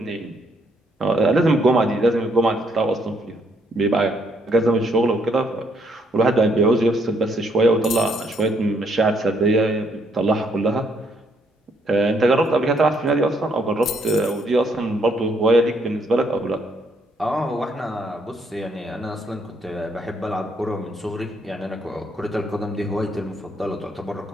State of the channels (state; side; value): normal; both; correlation 0.71